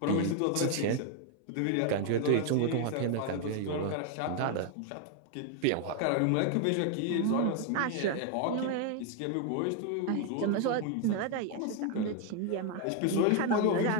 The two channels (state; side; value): different; both; correlation 0.00